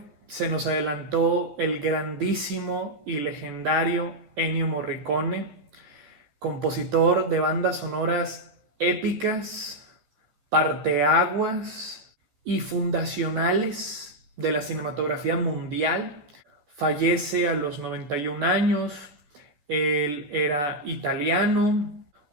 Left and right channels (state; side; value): late; left; 14 ms